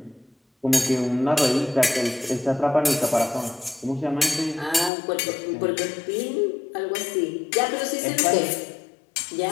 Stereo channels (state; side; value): drops out; right; at 4.9 s